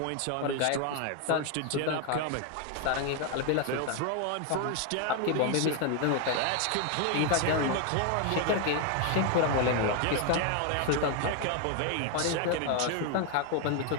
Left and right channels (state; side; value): different; both; correlation 0.01